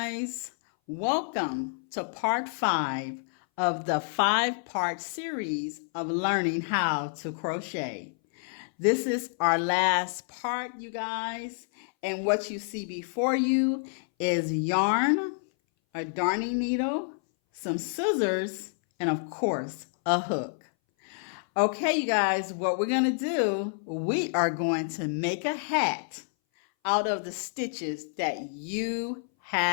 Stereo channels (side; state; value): right; silent; 59 dB below the other